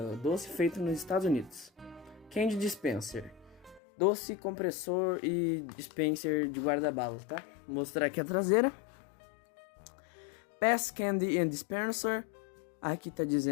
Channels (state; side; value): drops out; right; at 3.8 s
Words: doce feito nos Estados Unidos, Candy Dispenser, doce compressor e dispenser de guarda-balas, tá? Vou mostrar aqui a traseira. PES Candy and Dispenser, aqui tá